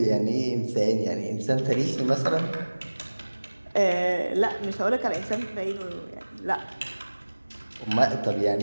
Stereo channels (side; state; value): both; inverted; correlation -1.00